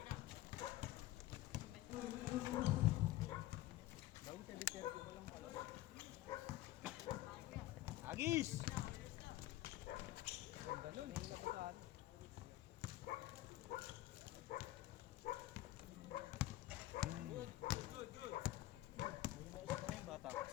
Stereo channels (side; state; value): right; quieter; 16.0 dB